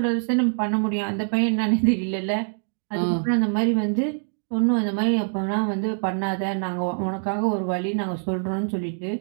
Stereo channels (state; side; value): silent; left; digital silence